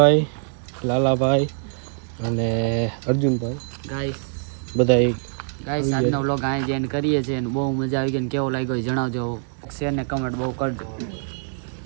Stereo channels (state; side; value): silent; left; digital silence